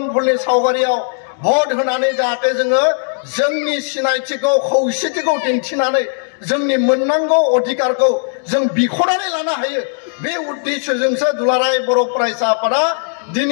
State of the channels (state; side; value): silent; right; digital silence